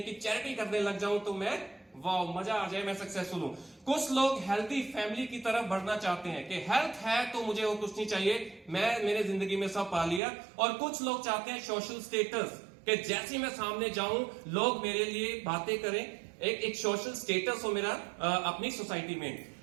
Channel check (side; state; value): left; drops out; at 10.2 s